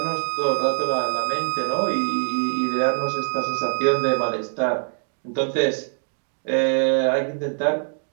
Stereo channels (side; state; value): left; silent; digital silence